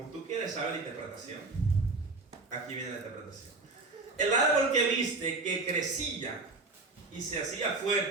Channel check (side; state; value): left; quieter; 3.5 dB